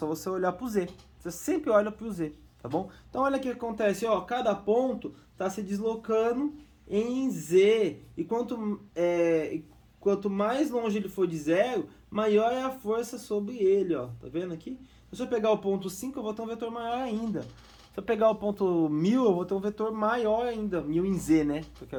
você olhar para o Z. Você sempre olha para o Z, tá bom? Então olha o que acontece, ó, cada ponto está se deslocando em Z. E quanto mais longe ele for de zero, maior é a força sobre ele, ó. Tá vendo aqui? Se eu pegar o ponto 5, eu vou ter um vetor maior ainda. Se eu pegar o ponto 1000, eu vou ter um vetor maior ainda. 1000 em Z, né? Que eu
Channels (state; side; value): identical; both; correlation 1.00